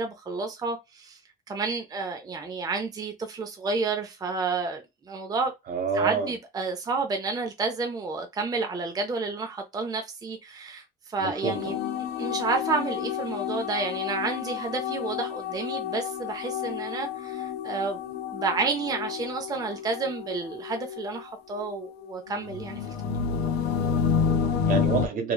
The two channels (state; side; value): normal; both; correlation 0.25